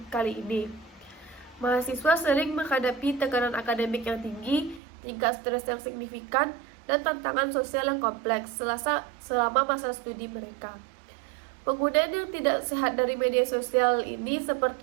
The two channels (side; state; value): left; drops out; at 4.8 s